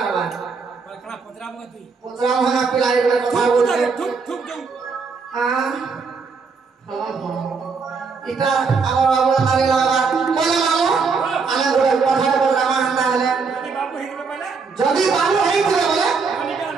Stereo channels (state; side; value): quieter; left; 4.9 dB